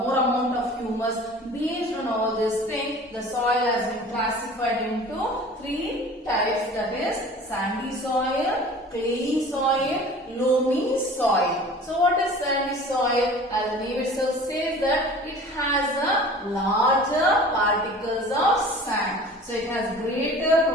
of humus. Based on all these things, the soil has been classified into 3 types, that is sandy soil, clayey soil, loamy soil. So what is sandy soil? As the name itself says that it has a larger particles of sand. So it has greater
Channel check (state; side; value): normal; both; correlation 0.43